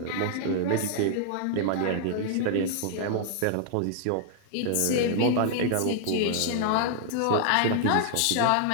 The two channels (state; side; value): different; both; correlation -0.01